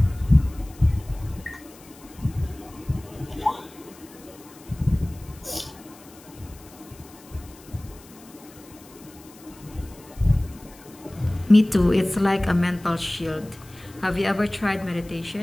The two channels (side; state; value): left; noise; hiss, 23 dB below the sound